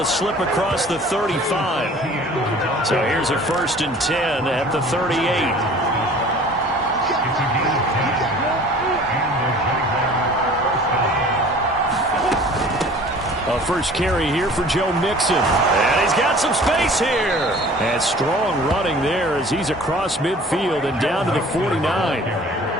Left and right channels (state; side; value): normal; both; correlation 0.47